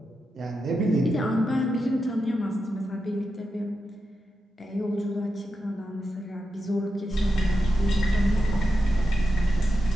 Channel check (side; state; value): both; normal; correlation 0.88